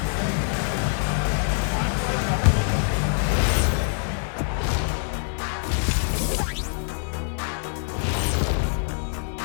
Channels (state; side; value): silent; right; 60 dB below the other